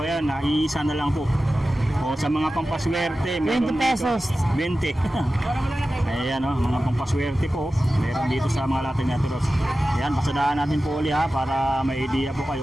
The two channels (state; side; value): normal; both; correlation 0.94